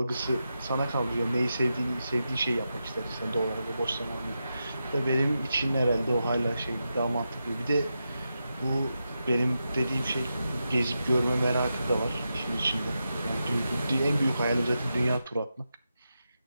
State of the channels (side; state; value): both; inverted; correlation -0.88